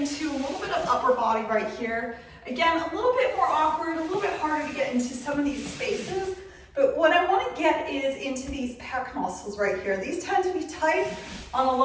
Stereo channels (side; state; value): both; identical; correlation 1.00